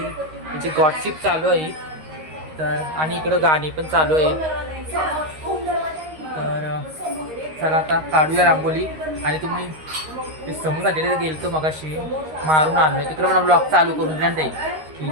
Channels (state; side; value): late; left; 13 ms